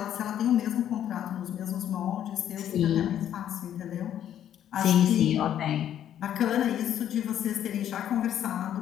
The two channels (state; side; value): quieter; right; 10.5 dB